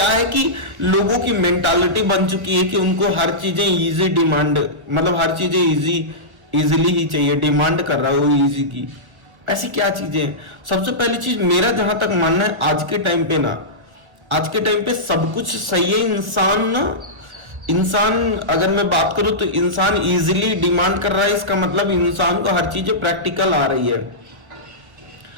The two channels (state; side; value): late; left; 1.3 ms